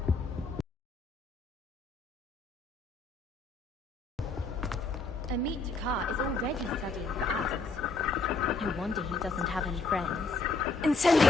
Amit Kaur is already studying for ours. No wonder he doesn't have any friends. Incendio!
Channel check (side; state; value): right; quieter; 3.7 dB